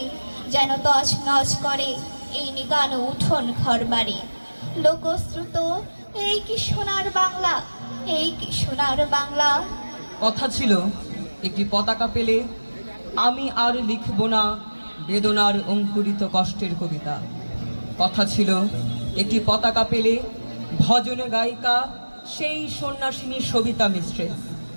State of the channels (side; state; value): both; inverted; correlation -1.00